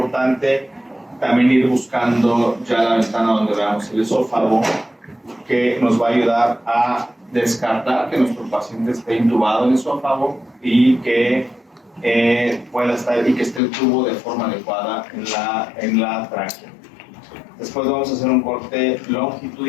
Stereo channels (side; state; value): right; drops out; at 13.6 s